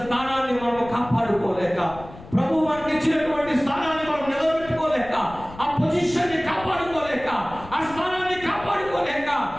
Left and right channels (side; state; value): left; noise; rumble, 17 dB below the sound